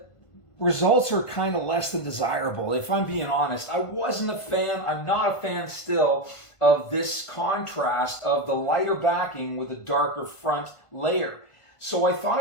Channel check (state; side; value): late; right; 1.5 ms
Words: results are kind of less than desirable. If I'm being honest, I wasn't a fan, I'm not a fan still of this contrast of the lighter backing with a darker front layer. So I thought